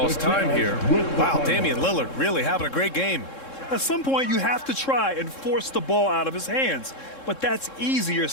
time here. Wow, Damian Lillard really having a great game. At some point, you have to try and force the ball out of his hands, but that's easier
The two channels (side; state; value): right; late; 3.7 ms